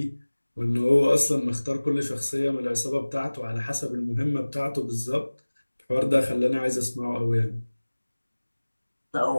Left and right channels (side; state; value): both; inverted; correlation -1.00